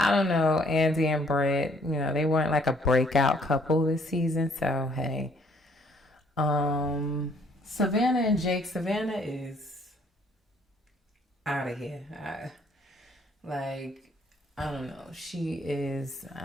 don't know, Andy and Brett, you know, they weren't like a breakout couple this season. So hey, Savannah and Jake. Savannah is out of here. I don't know. She is.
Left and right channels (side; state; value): both; normal; correlation 0.64